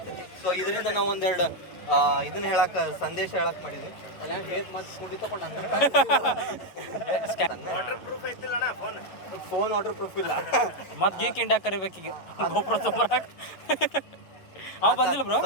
ಸೊ ಇದರಿಂದ ನಾವು ಒಂದೆರಡು ಇದನ್ನ ಸಂದೇಶ ಹೇಳಕ್ ಮಾಡಿದ್ವಿ. ಅಲ್ಲ ಮತ್ತೆ ಕುಂಡಿ ತಗೊಂಡು ಫೋನ್ ವಾಟರ್ ಪ್ರೂಫ್ ಇಲ್ಲ. ಮತ್ ಗೀಕ್ ಇಂಡಿಯಾ ಕರಿಬೇಕೀಗ ಗೋಪ್ರ ತೊಂಬರಾಕ್. ಅವ ಬಂದಿಲ್ಲ ಬ್ರೋ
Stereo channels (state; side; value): late; right; 11 ms